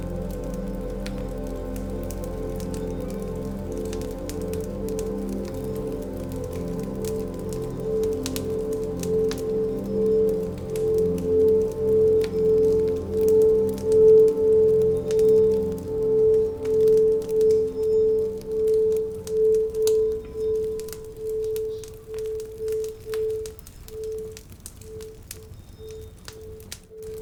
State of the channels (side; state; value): both; identical; correlation 1.00